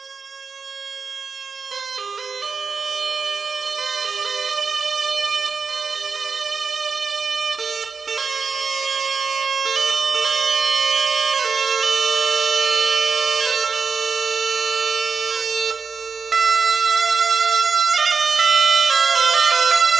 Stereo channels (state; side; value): quieter; left; 5.0 dB